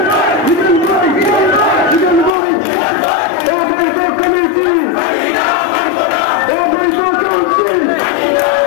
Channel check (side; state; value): right; drops out; at 2.4 s